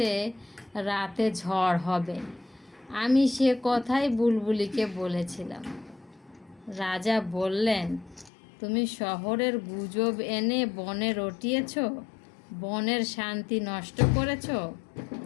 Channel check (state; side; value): drops out; right; at 8.3 s